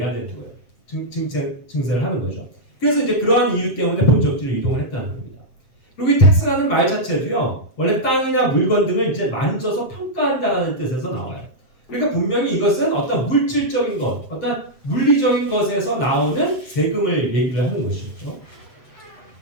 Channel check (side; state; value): right; late; 7.7 ms